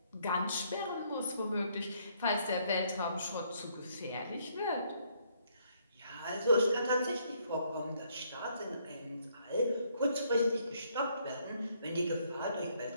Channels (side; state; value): both; inverted; correlation -0.69